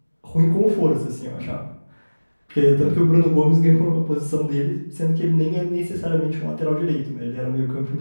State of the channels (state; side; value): inverted; both; correlation -1.00